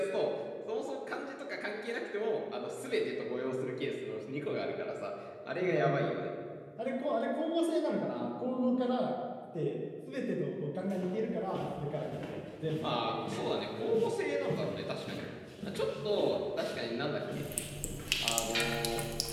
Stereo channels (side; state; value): both; identical; correlation 1.00